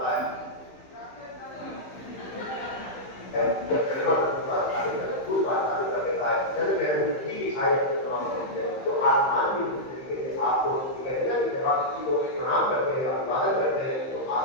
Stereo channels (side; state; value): right; late; 15 ms